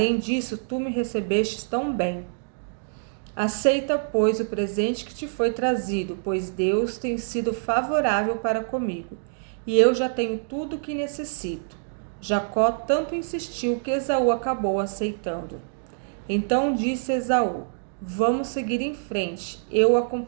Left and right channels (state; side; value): silent; left; digital silence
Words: disso, tu me recebestes tão bem. Aceita, pois, o presente que te foi trazido, pois Deus tem sido favorável para comigo, e eu já tenho tudo o que necessito. Jacó tanto insistiu que Esaú acabou aceitando. Então disse Esaú: Vamos seguir em frente, eu o